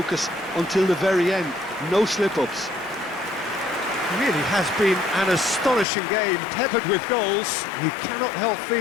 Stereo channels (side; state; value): right; drops out; at 5.9 s